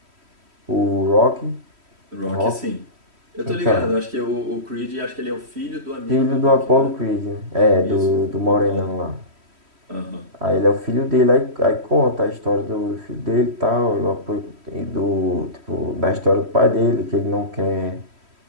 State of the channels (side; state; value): left; late; 3.1 ms